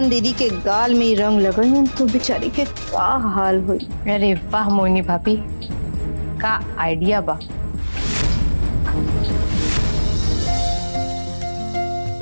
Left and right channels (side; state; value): both; inverted; correlation -1.00